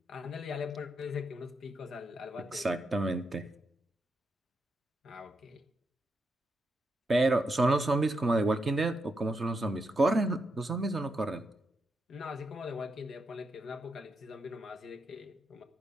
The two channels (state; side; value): normal; both; correlation 0.83